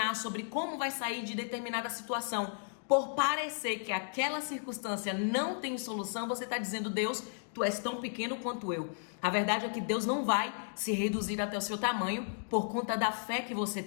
sobre como vai sair de determinada situação, por parecer que aquela circunstância não tem solução, você está dizendo: Deus, tu és tão pequeno quanto eu. A verdade é que Deus não vai se reduzir até o seu tamanho por conta da fé que você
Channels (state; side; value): silent; right; digital silence